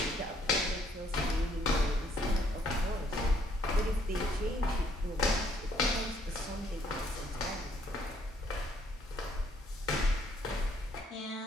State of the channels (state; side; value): normal; both; correlation 0.66